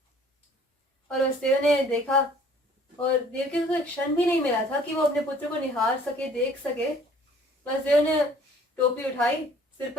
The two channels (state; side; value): normal; both; correlation 0.55